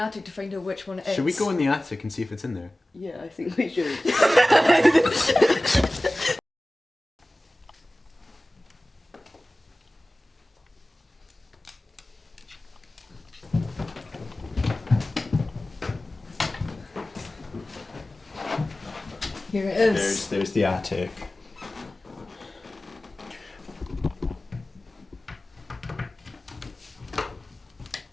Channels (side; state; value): both; normal; correlation 0.97